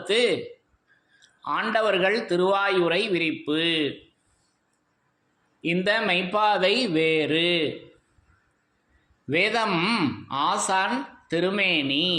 ஆண்டவர்கள் திருவாயுரை விரிப்பு. இந்த மெய்ப்பாதை வேறு. வேதம் ஆசான் திருமேனி.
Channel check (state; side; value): identical; both; correlation 1.00